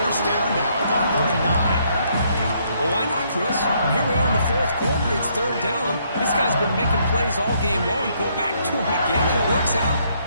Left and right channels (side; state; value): both; inverted; correlation -0.70